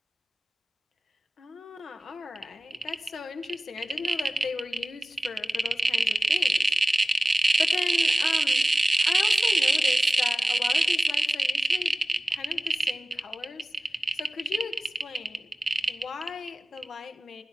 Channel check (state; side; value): normal; both; correlation 0.97